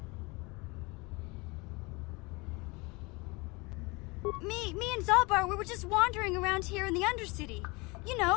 Me and Zalbar, we were just wandering around here in the undercity. You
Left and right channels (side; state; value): right; quieter; 26.2 dB